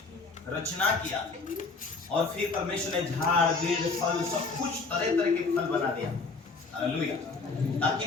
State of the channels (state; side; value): quieter; right; 4.1 dB